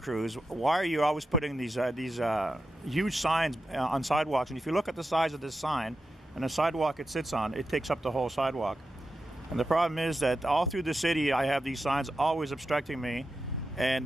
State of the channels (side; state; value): both; normal; correlation 0.89